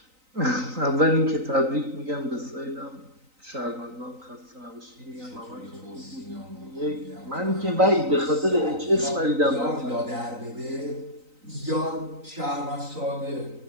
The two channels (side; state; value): left; late; 3.9 ms